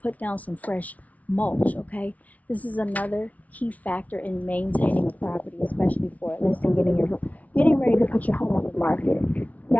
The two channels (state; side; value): late; right; 0.070 ms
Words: put down some fresh mulch, okay? This is another key factor in maintaining a property, especially for a listing, getting ready to put your home on the market.